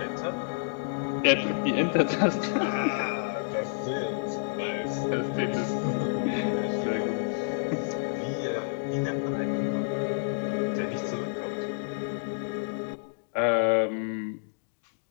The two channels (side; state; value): right; silent; digital silence